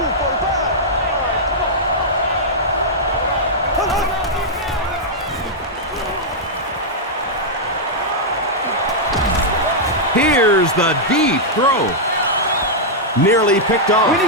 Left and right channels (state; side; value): normal; both; correlation -0.07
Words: Here's the deep throw. Nearly picked off.